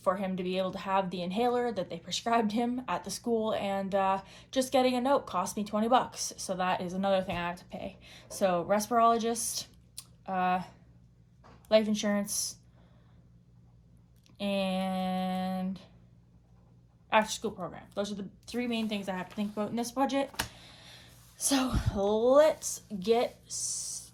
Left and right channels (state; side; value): identical; both; correlation 1.00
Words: him to be able to have the inhaler that they prescribed him at the school, and just getting a note cost me $20, so that is another thing I have to pay. So respirologist, life insurance, and after school program. Those are the 3 main things I have to think about in this budget. So let's get